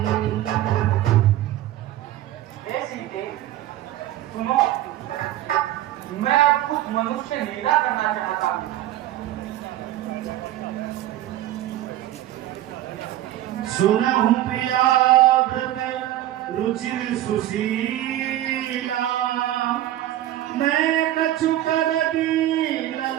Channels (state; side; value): quieter; left; 13.8 dB